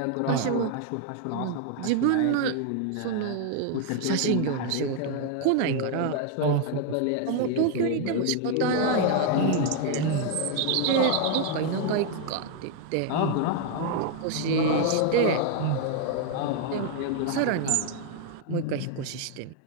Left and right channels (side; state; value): both; different; correlation 0.00